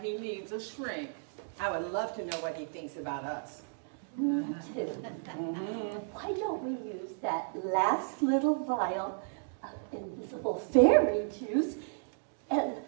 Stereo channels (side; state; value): left; silent; digital silence